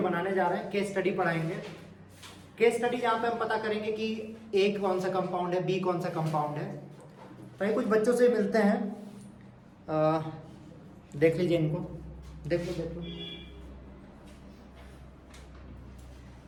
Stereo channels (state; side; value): identical; both; correlation 1.00